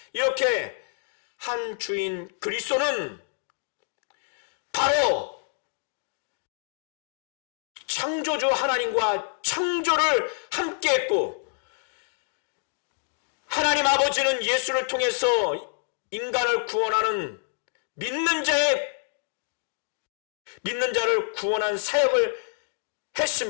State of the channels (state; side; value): silent; right; digital silence